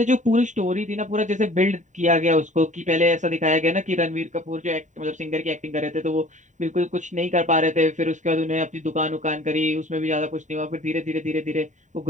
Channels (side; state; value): left; late; 0.36 ms